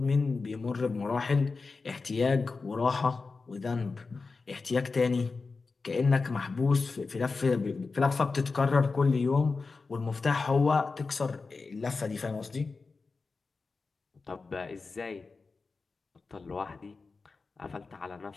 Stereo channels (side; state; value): right; quieter; 4.2 dB